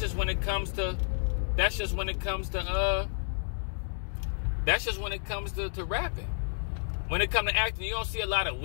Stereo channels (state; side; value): silent; right; digital silence